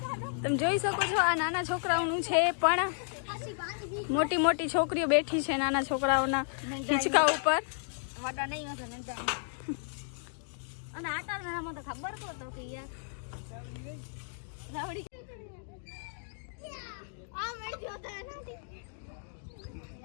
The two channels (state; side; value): silent; right; digital silence